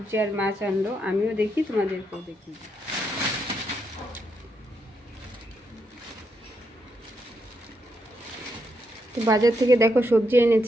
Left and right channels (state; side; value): normal; both; correlation 0.80